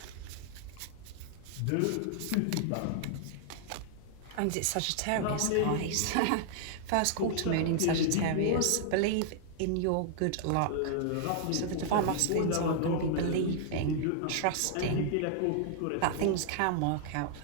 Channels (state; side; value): different; both; correlation -0.01